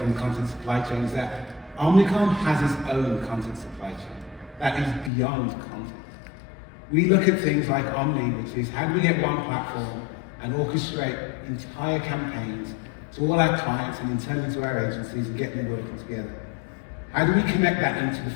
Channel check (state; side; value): drops out; right; at 5.1 s